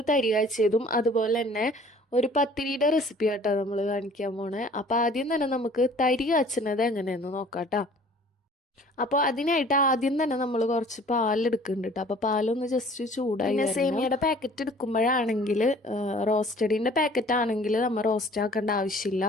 തരി കാച്ചിയതും അതുപോലെ തന്നെ ഒരു പത്തിരിയുടെ റെസിപ്പി ആട്ടോ നമ്മൾ കാണിക്കാൻ പോണേ. അപ്പോൾ ആദ്യം തന്നെ നമുക്ക് തരി കാച്ചുന്നത് എങ്ങനെയെന്ന് നോക്കാട്ടോ. അപ്പോൾ അതിനായിട്ട് ആദ്യം തന്നെ നമ്മൾ കുറച്ച് പാലെടുക്കുന്നുണ്ട് കേട്ടോ. അപ്പോൾ പാലൊന്ന് ജസ്റ്റ് ചൂടായി. പിന്നെ സേമിയയുടെ പാക്കറ്റ് എടുക്കുമ്പോഴാണെങ്കിൽ റോസ്റ്റഡിൻ്റെ പാക്കറ്റ് ആണെങ്കിൽ നമ്മൾ റോസ്റ്റ് ആക്കേണ്ട ആവശ്യമില്ല.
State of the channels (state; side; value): normal; both; correlation 0.51